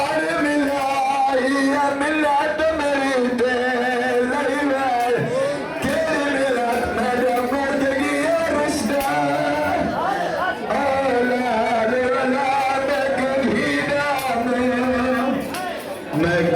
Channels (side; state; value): both; identical; correlation 1.00